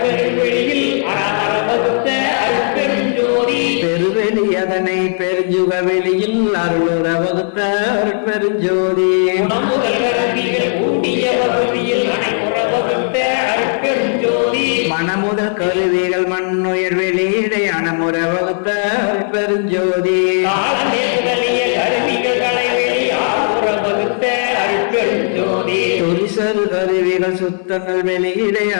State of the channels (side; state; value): right; silent; 59 dB below the other